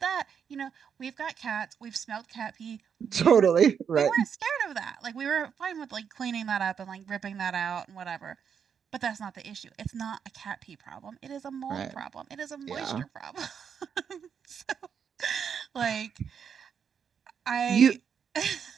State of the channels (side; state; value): left; quieter; 7.3 dB